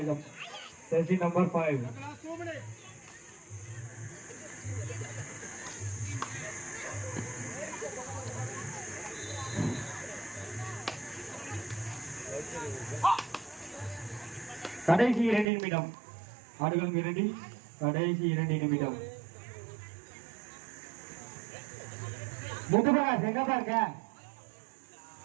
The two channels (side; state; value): left; drops out; at 15.5 s